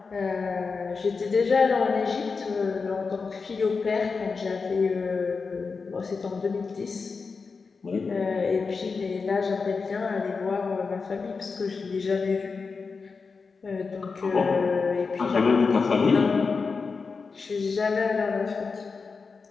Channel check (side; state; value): right; quieter; 4.8 dB